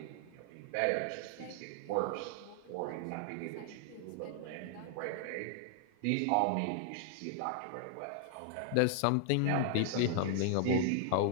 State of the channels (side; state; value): both; different; correlation -0.01